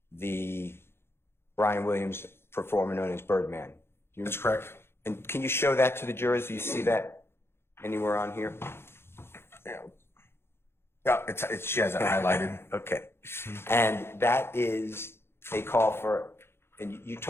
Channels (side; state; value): right; late; 0.12 ms